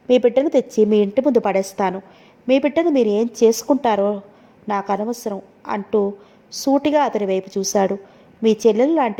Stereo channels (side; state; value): both; identical; correlation 1.00